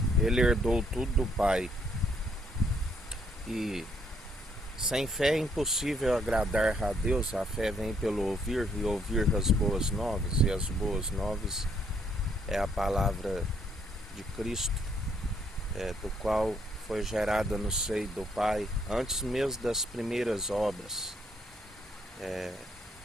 ele herdou tudo do Pai. E sem fé é impossível agradar a Deus. A fé vem pelo ouvir, e ouvir as boas novas, e as boas novas é a palavra de Cristo, do qual foi gerada no seio do Pai, antes mesmo das primeiras obras,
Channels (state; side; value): normal; both; correlation 0.70